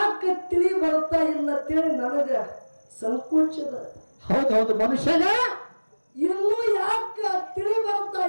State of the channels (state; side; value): inverted; both; correlation -1.00